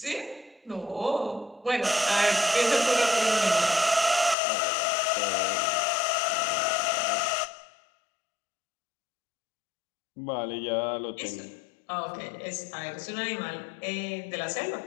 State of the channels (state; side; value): drops out; right; at 4.4 s